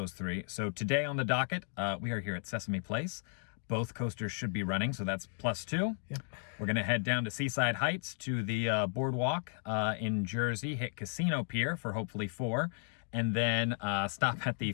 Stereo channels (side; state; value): right; silent; 55 dB below the other